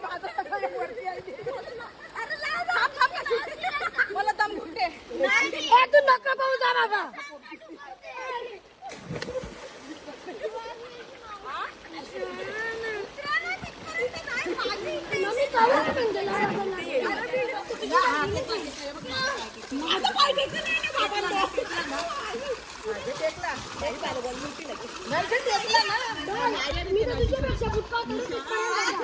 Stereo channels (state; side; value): identical; both; correlation 1.00